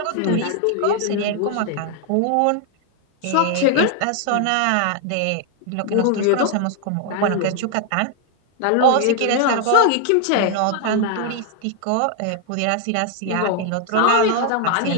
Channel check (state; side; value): different; both; correlation 0.00